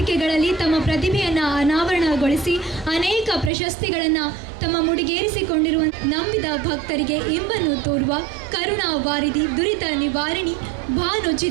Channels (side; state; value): left; drops out; at 3.5 s